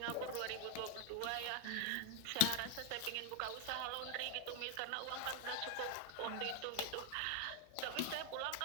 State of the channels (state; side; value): different; both; correlation 0.00